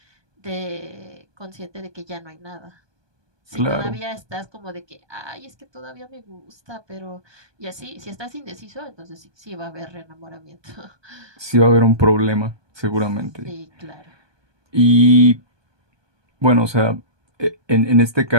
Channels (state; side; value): late; left; 1.2 ms